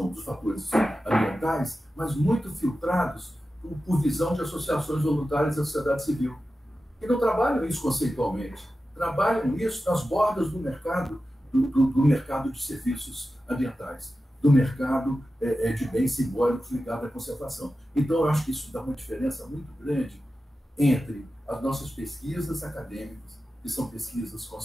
dos fatores ambientais, mas muito filtrados por visão de associações voluntárias da sociedade civil. E não trabalham isso conceitualmente. Trabalham isso nas bordas do mercado, do mercado de serviços ambientais, do mercado de bens simbólicos ligado à conservação. Então, eu acho que isso dá uma diferença muito grande entre as nossas pesquisas acadêmicas, que são pesquisas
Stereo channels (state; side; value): normal; both; correlation 0.93